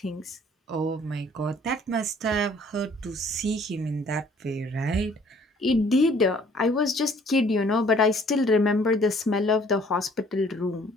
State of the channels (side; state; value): both; normal; correlation 0.58